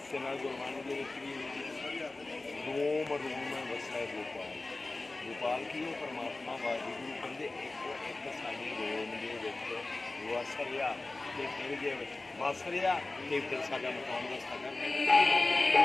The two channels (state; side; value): quieter; right; 3.2 dB